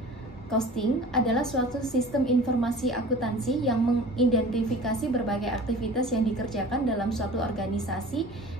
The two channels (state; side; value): normal; both; correlation 0.42